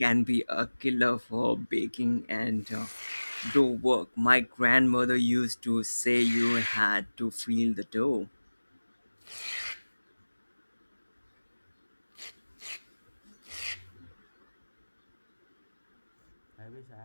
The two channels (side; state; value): both; inverted; correlation -1.00